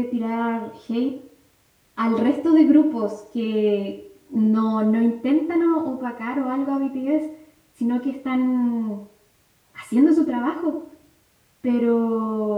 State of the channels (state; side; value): identical; both; correlation 1.00